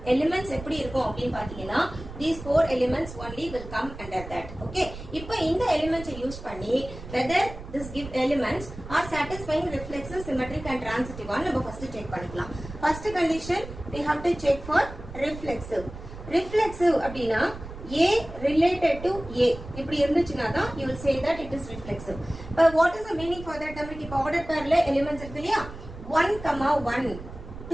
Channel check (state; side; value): noise; right; rumble, 13 dB below the sound